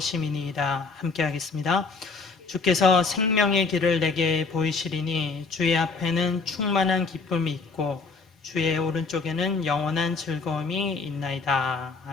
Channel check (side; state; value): right; quieter; 4.4 dB